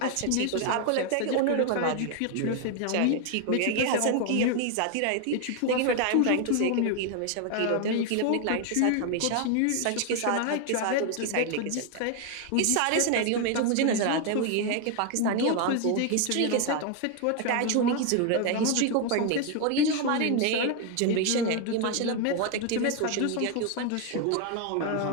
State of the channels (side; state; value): both; different; correlation 0.01